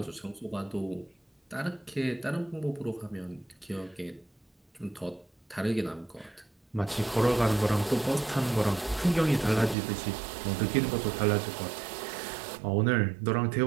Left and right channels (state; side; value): drops out; left; at 9.8 s